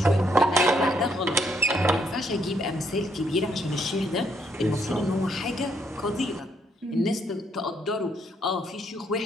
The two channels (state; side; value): normal; both; correlation 0.72